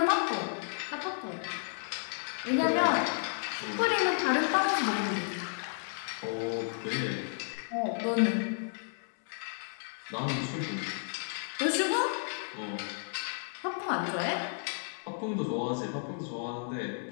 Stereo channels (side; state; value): right; silent; digital silence